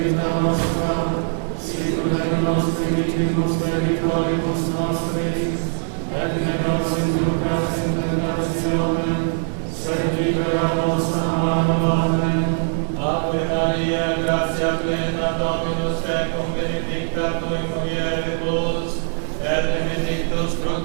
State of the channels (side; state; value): left; silent; digital silence